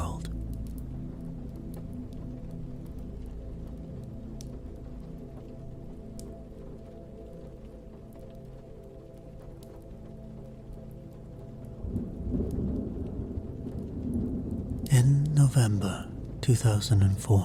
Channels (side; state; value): both; identical; correlation 1.00